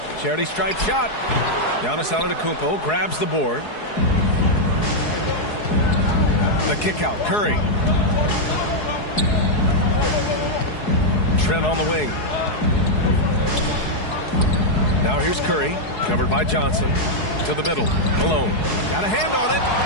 Charity stripe shot. Giannis Antetokounmpo grabs the board. The kick out. Curry. Trent on the wing. Now here's Curry, covered by Johnson. To the middle. Malone. Got a hand on it.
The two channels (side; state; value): right; late; 4.7 ms